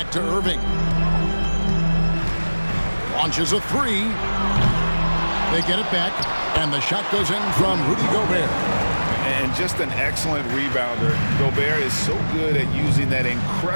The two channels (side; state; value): both; inverted; correlation -1.00